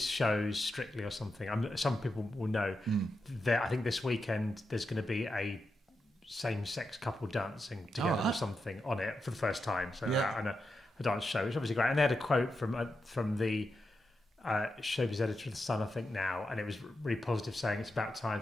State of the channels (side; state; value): both; normal; correlation 0.87